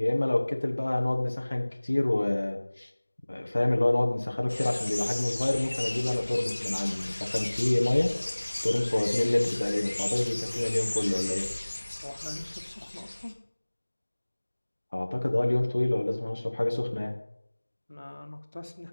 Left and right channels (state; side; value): inverted; both; correlation -1.00